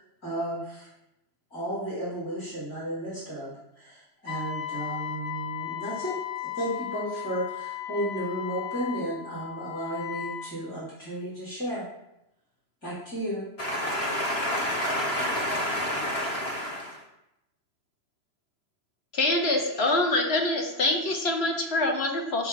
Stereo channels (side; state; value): right; late; 3.0 ms